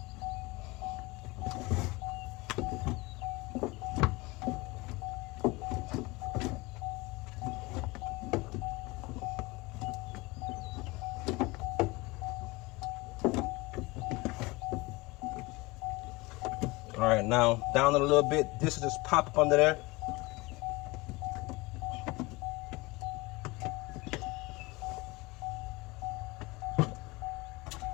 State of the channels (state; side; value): quieter; right; 23.3 dB